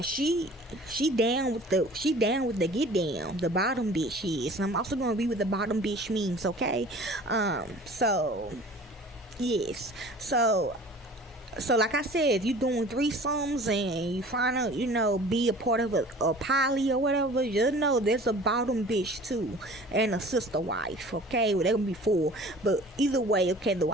she down with the get down. The bottom bitch is. I'm also gonna read what the bottom bitch means, okay? So yes, so like I said, if you're doing threesomes and you trying to, be a part of a poly or whatever, just know there's a bottom bitch too, and a sister wife, okay? Well, they're gonna be four, but either way, okay, the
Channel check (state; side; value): normal; both; correlation 0.45